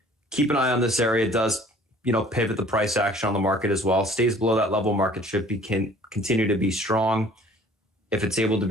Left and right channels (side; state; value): both; normal; correlation 0.52